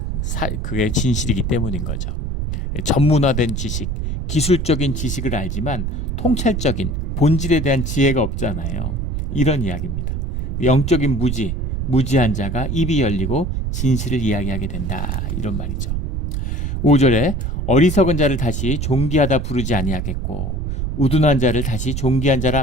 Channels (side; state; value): right; noise; rumble, 2 dB below the sound